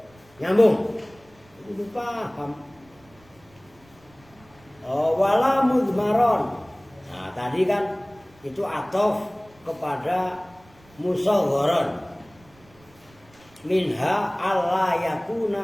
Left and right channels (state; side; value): noise; right; rumble, 28 dB below the sound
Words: nyambung. Udah paham. Wala mudmaron. Nah, tadi kan itu atof kepada musawwaron. Minha alla